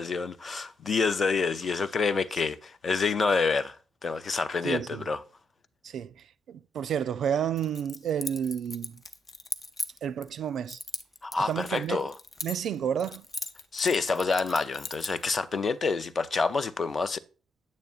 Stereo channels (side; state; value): both; normal; correlation 0.77